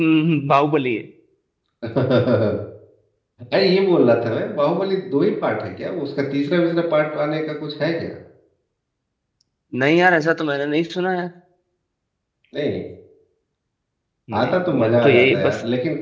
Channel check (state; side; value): identical; both; correlation 1.00